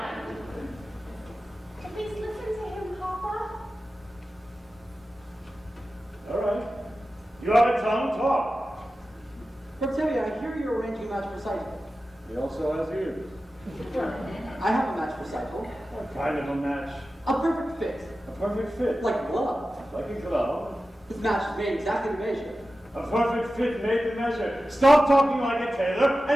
Please listen to him, Papa. All right. You have a tongue, talk. Reptavia, I hear you're arranging a match for Cycle. He also has ears. I have a match for Cycle. What kind of a match? A perfect fit. A perfect fit. Like a glove. Like a glove. This match is made exactly to measure. A perfect fit made to measure. Stop talking like a tailor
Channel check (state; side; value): normal; both; correlation 0.94